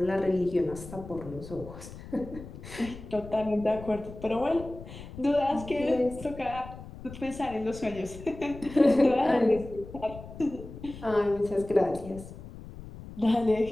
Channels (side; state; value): left; noise; rumble, 14 dB below the sound